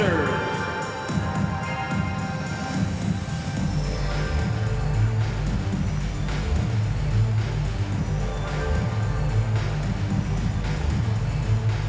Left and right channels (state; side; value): identical; both; correlation 1.00